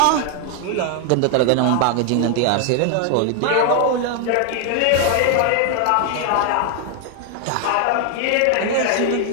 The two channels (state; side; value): different; both; correlation 0.00